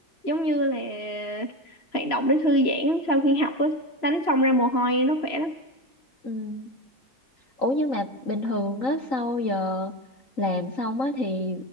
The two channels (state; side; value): late; right; 3.0 ms